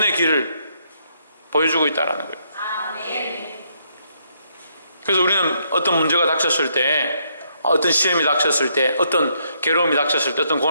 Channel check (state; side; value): inverted; both; correlation -0.73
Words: 길을 보여주고 있다는 거예요. 그래서 우리는 어떤 문제가 닥쳤을 때 어떤 시험이 닥쳤을 때 어떤 괴로움이 닥쳤을 때 어떤